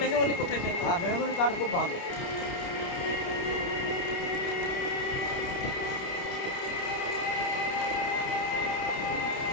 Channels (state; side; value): late; right; 29 ms